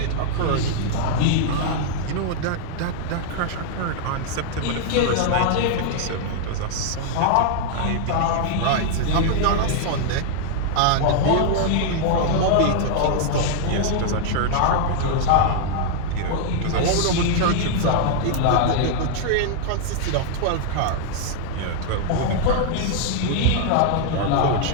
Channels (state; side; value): different; both; correlation 0.00